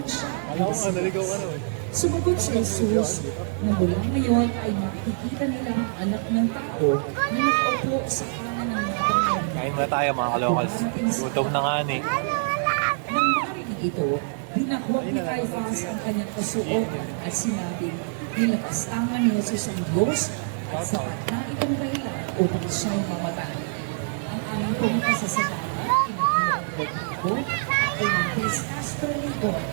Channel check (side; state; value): left; silent; 62 dB below the other